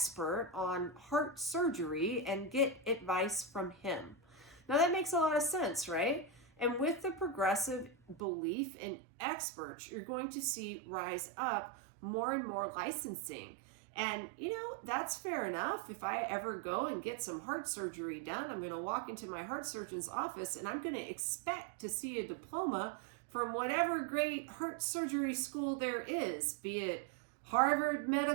on heart surgery and get advice from him. Now that makes a lot of sense, right? And with the progressive belief in experts, you're going to see rise up more and more licensing. And, that's fair enough. If I ever go and get some heart surgery done, I'm going to walk into my heart surgeon's office and I'm going to expect to see a diploma from whatever great heart surgery school there is, be it Harvard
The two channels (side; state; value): left; drops out; at 8.2 s